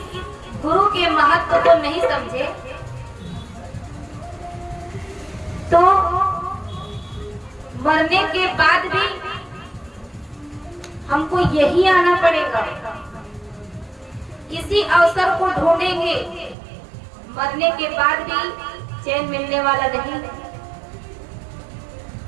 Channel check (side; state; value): left; drops out; at 16.6 s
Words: गुरु के महत्व को नहीं समझे, तो मरने के बाद भी हमको यही आना पड़ेगा, इसी अवसर को ढूंढेंगे। मरने के बाद भी चैन मिलने वाला नहीं।